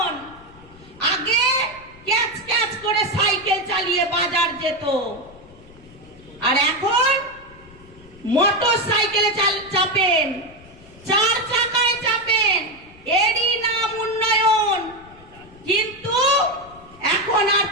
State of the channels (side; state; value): left; noise; rumble, 23 dB below the sound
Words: আগে ক্যাচ ক্যাচ করে সাইকেল চালিয়ে বাজার যেত, আর এখন মোটর সাইকেলে চাপেন, 4 চাকায় চাপেন, এরই নাম উন্নয়ন। কিন্তু এখন আর